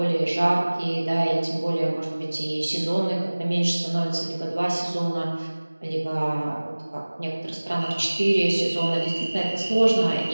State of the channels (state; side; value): inverted; both; correlation -1.00